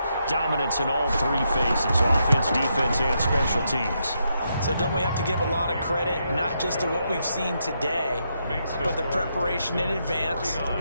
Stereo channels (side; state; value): both; inverted; correlation -0.80